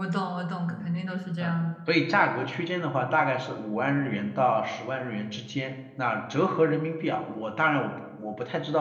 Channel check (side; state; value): both; identical; correlation 1.00